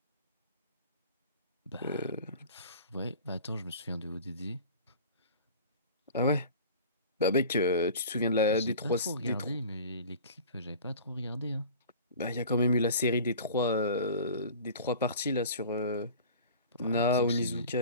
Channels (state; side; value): inverted; both; correlation -0.41